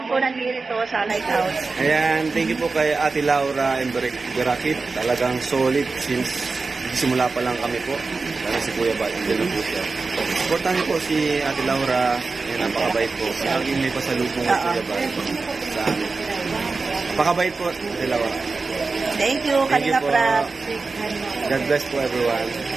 po nandito sa Lighthouse. Ayan, thank you po kay Ate Laura and Berakit. Talagang solid since simula pa lang kami po. Lalo si Kuya Bat, hindi lang po siya. Supportan niyo po si Ate Laura. Ayan, napakabait po. Laging may pasalubong at Kuya Bat sa amin. Napakabait po, Ate Laura. Thank you, Thank you Kalinga po. Prab. God bless po everyone.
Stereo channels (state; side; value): quieter; left; 4.0 dB